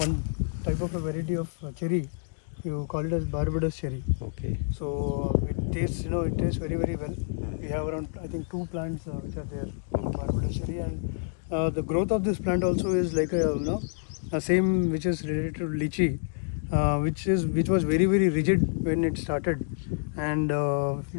type of a variety of cherry. You call it as Barbados cherry. Okay. So it tastes, it tastes very, very well. We have around, I think, 2 plants which are there, Barbados cherry, and the growth of this plant also is like a same which is related to lychee, which was very, very rigid when it started, and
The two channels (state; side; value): silent; right; digital silence